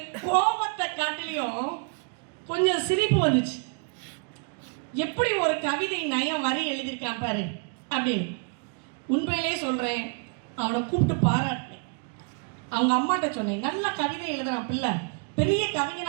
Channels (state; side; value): quieter; left; 37.5 dB